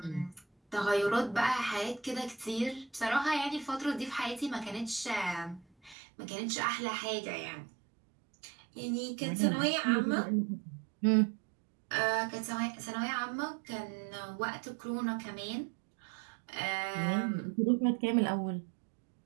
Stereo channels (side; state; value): left; drops out; at 6.0 s